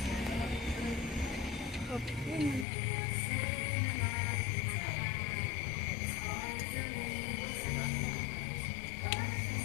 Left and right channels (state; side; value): drops out; right; at 2.7 s